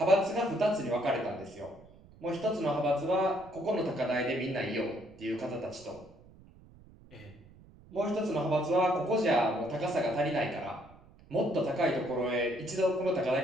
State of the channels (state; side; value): noise; right; rumble, 24 dB below the sound